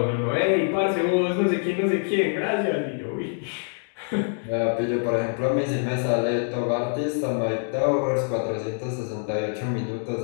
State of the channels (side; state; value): right; silent; 62 dB below the other